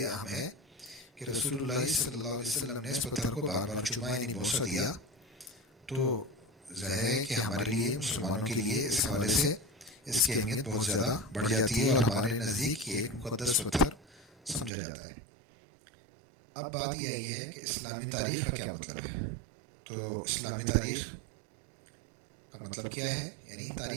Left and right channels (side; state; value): left; drops out; at 14.7 s